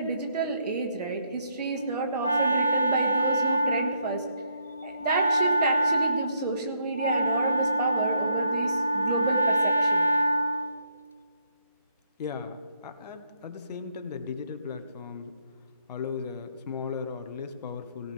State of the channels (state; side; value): inverted; both; correlation -0.75